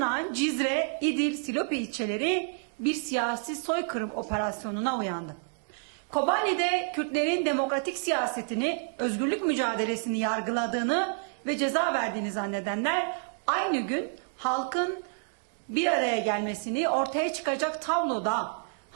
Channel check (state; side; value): silent; left; 59 dB below the other